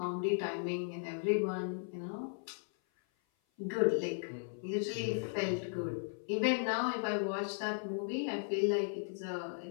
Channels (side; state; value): right; silent; 53 dB below the other